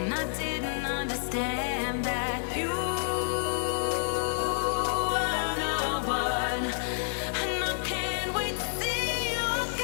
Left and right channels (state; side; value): silent; right; 56 dB below the other